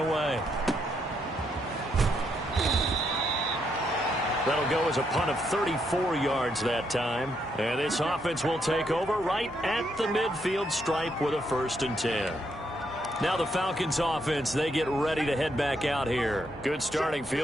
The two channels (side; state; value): both; normal; correlation 0.77